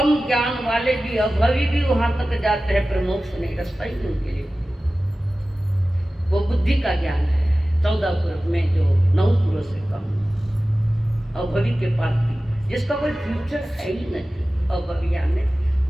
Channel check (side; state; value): both; normal; correlation 0.96